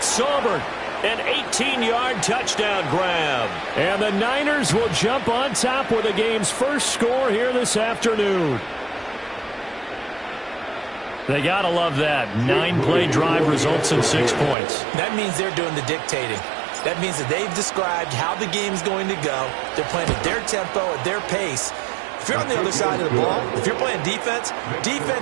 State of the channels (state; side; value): drops out; left; at 14.6 s